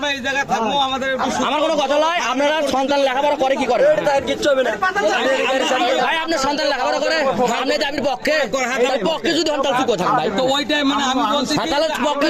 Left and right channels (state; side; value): identical; both; correlation 1.00